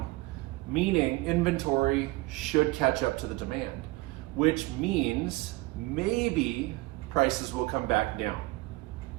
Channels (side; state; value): left; quieter; 20.8 dB